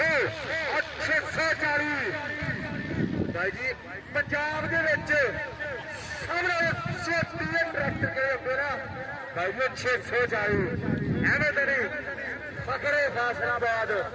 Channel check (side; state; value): both; identical; correlation 1.00